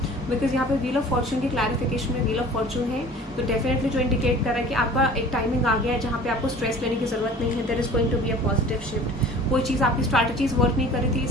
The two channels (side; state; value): both; normal; correlation 0.45